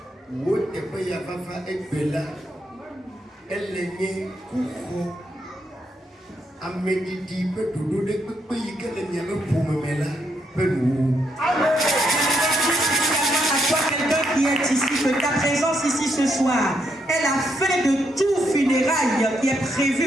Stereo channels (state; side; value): normal; both; correlation 0.77